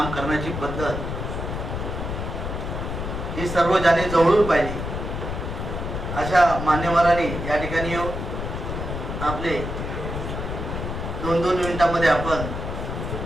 करण्याची पद्धत ही सर्व ज्यांनी जवळून पाहिली अशा मान्यवरांनी या ठिकाणी येऊन आपले 2-2 मिनिटांमध्ये आपण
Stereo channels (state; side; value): noise; left; rumble, 5 dB below the sound